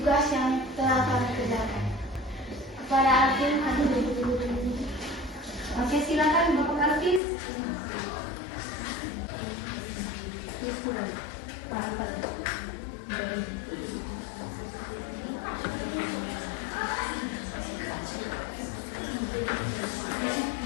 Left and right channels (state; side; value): drops out; right; at 7.2 s